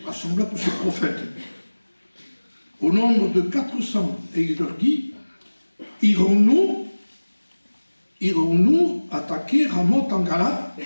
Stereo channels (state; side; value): inverted; both; correlation -1.00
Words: tous ses prophètes, au nombre de 400, et il leur dit, irons-nous attaquer Ramoth en Galate,